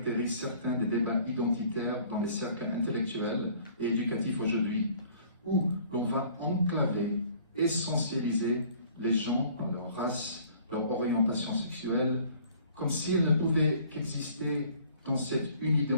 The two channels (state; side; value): inverted; both; correlation -0.54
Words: certains des débats identitaires dans les cercles intellectuels et éducatifs aujourd'hui, où l'on va enclaver, essentialiser les gens par leur race, leur orientation sexuelle, comme s'ils ne pouvaient qu'exister dans cette